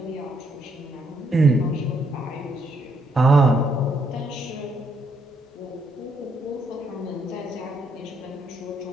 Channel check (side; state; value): both; normal; correlation 0.73